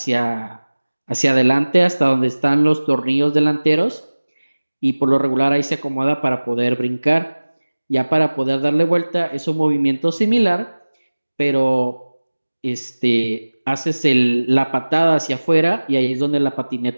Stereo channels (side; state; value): both; inverted; correlation -1.00